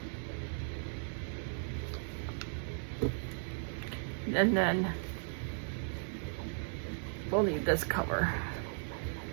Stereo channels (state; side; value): silent; left; digital silence